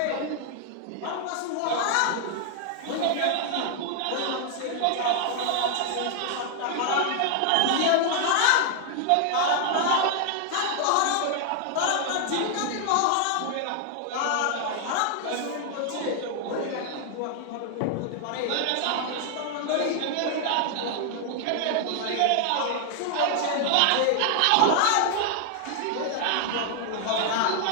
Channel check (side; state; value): both; different; correlation 0.00